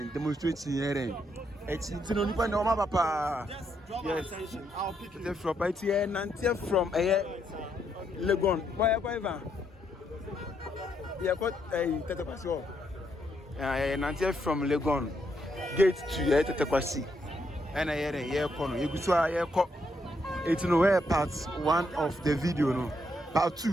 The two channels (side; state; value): both; normal; correlation 0.77